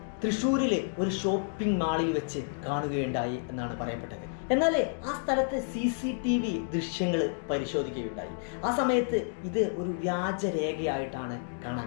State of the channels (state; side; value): silent; right; digital silence